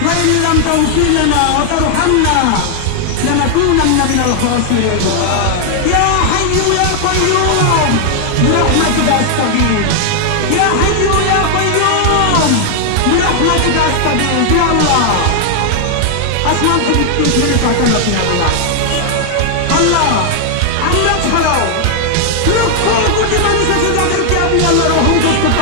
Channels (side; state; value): both; different; correlation 0.00